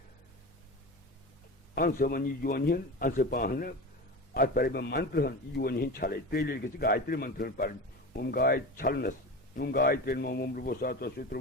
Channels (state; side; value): normal; both; correlation 0.28